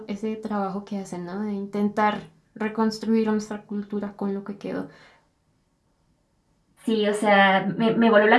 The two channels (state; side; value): identical; both; correlation 1.00